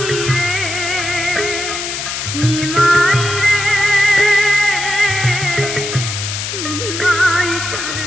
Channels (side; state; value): left; noise; hiss, 5 dB below the sound